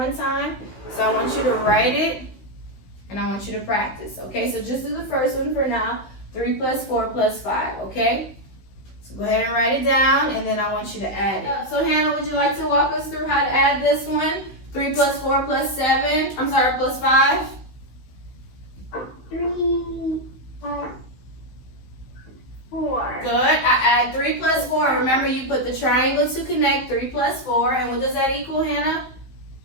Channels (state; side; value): late; right; 16 ms